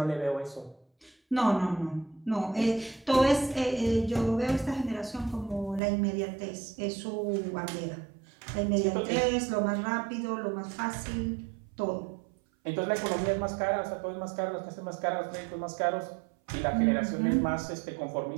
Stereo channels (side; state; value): left; drops out; at 5.8 s